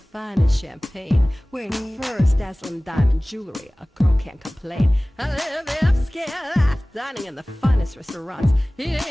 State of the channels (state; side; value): normal; both; correlation 0.98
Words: champagne, wearing furs, dazzling diamond jewelry. A girl can't complain. I live the upscale life, dining in the finest restaurants,